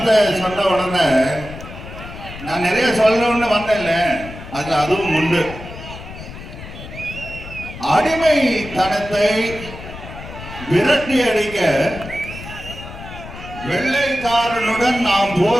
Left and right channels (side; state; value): left; noise; rumble, 13 dB below the sound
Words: சொன்ன உடனே நான் நிறைய சொல்லணும்னு வந்தேன்ல, அதுல அதுவும் உண்டு. அடிமைத்தனத்தை விரட்டி அடிக்க வெள்ளைக்காரனுடன் நாம்